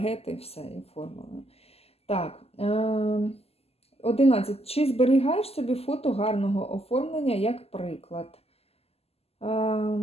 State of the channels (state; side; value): late; right; 0.29 ms